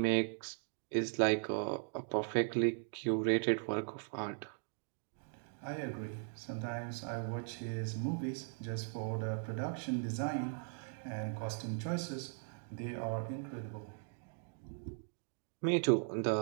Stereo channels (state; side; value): silent; left; 52 dB below the other